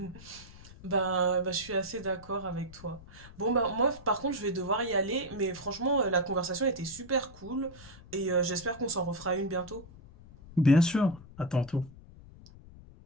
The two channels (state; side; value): noise; left; rumble, 19 dB below the sound